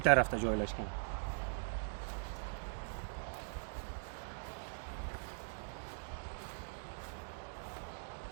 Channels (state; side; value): silent; left; digital silence